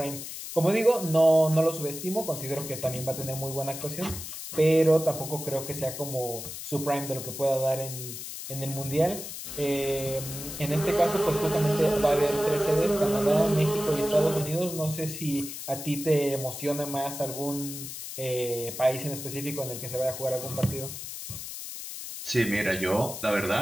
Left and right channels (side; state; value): left; noise; hiss, 9 dB below the sound